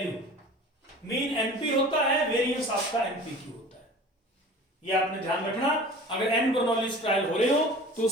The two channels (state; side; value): normal; both; correlation 0.41